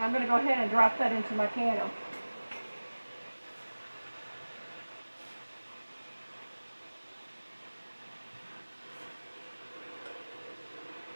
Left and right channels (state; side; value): inverted; both; correlation -1.00